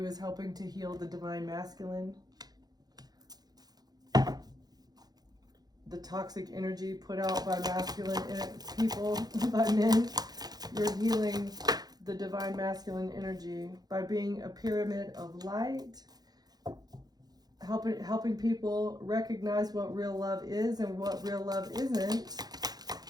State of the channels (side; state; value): left; late; 0.19 ms